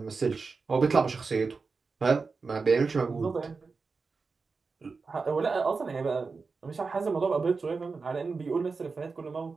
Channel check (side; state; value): left; quieter; 4.5 dB